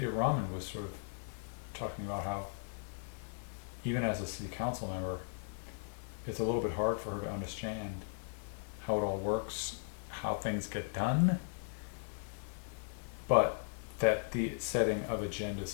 Raman was sort of talking about how even as a city council member, it's a little bit hard for her to understand how it all works, how things get done, but that the setting of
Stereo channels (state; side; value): silent; right; 53 dB below the other